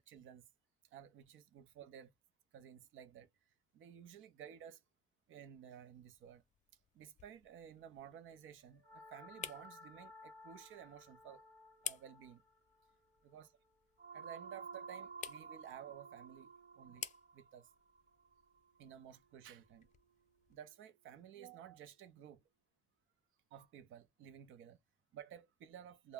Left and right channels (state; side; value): normal; both; correlation -0.04